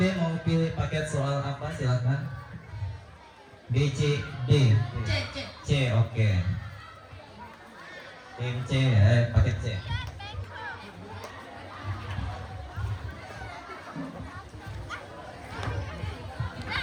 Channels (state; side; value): identical; both; correlation 1.00